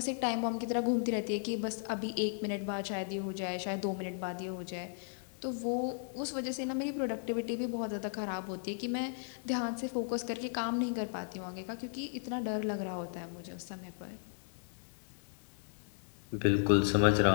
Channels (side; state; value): right; silent; digital silence